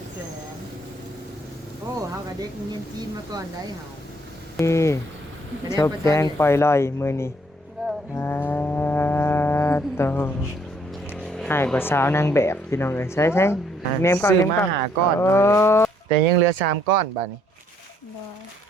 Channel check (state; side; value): normal; both; correlation 0.67